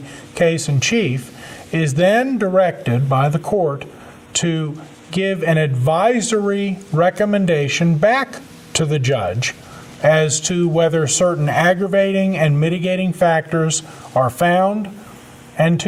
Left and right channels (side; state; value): both; identical; correlation 1.00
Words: case in chief, is then directed by the court to give an advisory recommendation back to the judge as to whether certain aggravating and mitigating factors are found, and